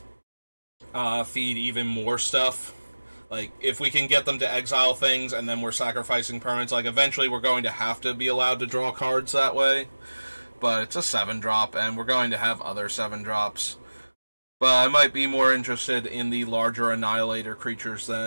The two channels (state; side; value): inverted; both; correlation -1.00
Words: feed even more stuff. Like, if we can get them to exile things and then we're sacrificing permanents, like, eventually we're going to have to be allowed to draw cards that way. But it's a 7-drop, and we're going to have other 7-drops. But I might be more interested in the larger Annihilator creatures